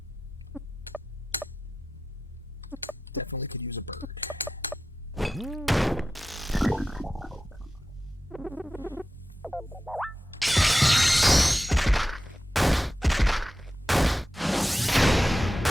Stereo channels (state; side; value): normal; both; correlation 0.93